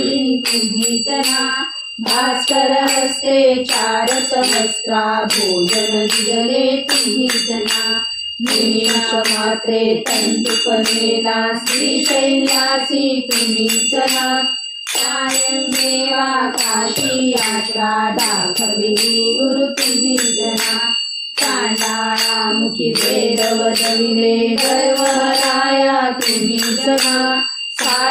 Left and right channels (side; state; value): both; identical; correlation 1.00